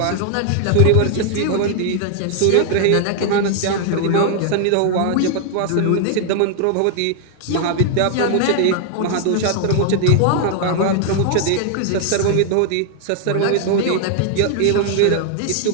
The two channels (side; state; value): both; different; correlation 0.00